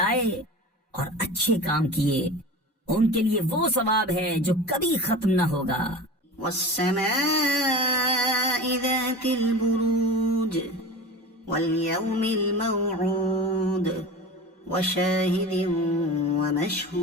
اور اچھے کام کیے ان کے لیے وہ ثواب ہے جو کبھی ختم نہ ہوگا. والسماء ذات البروج واليوم الموعود وشاهد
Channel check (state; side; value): normal; both; correlation 0.32